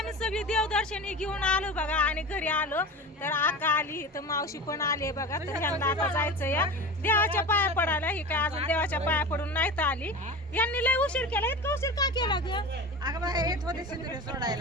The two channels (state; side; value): normal; both; correlation 0.30